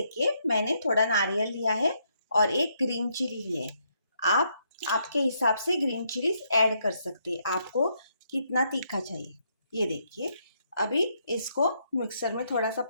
मैंने थोड़ा नारियल लिया है और एक ग्रीन चिली ली है। आप आपके हिसाब से ग्रीन चिलीज ऐड कर सकते हैं, आपको कितना तीखा चाहिए। ये देखिए, अभी इसको मिक्सर में थोड़ा सा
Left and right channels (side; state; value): both; inverted; correlation -0.75